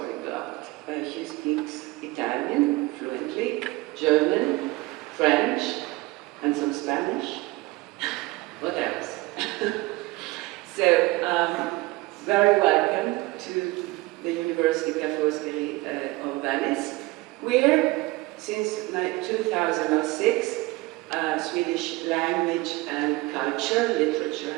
She speaks Italian fluently, German, French, and some Spanish. What else? So, very welcome to the University Ca' Foscari of Venice, where since 2006, Swedish language and culture, literature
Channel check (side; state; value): left; quieter; 21.5 dB